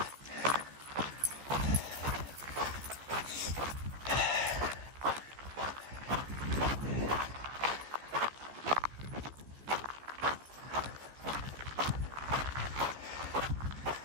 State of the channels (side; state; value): left; late; 14 ms